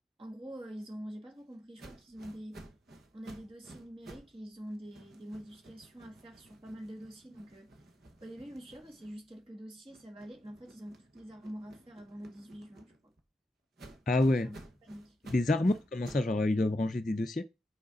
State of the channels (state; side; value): normal; both; correlation 0.87